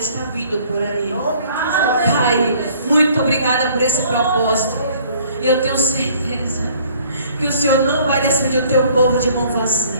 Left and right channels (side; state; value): both; inverted; correlation -0.57